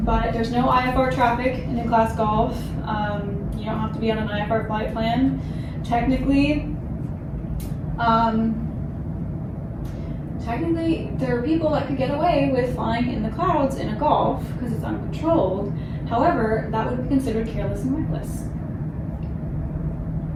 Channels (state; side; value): identical; both; correlation 1.00